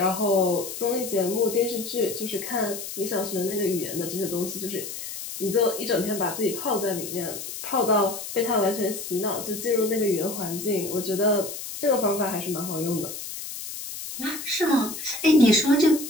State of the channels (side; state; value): left; noise; hiss, 8 dB below the sound